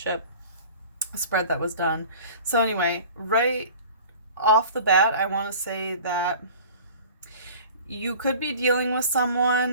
spread that was done. So anyway, right off the bat, I want to say that you could be dealing with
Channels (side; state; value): both; inverted; correlation -0.43